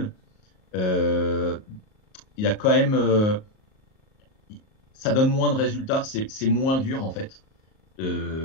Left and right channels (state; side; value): late; right; 38 ms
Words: il y a quand même... ça donne moins de résultats, c'est moins dur en fait.